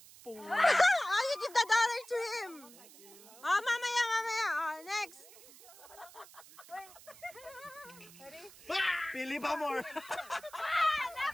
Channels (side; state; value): right; noise; hiss, 20 dB below the sound